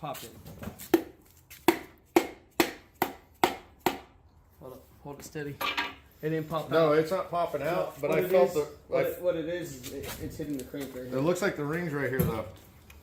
in. Hold it steady. It didn't pop out. No, it's not popping out, but What I it felt is- the. What it is it's hitting the crank right It here. looks like the ring's right here, though.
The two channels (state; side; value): identical; both; correlation 1.00